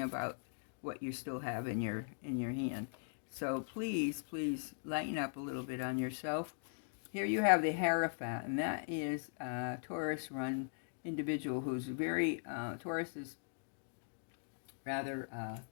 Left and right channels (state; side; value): silent; right; digital silence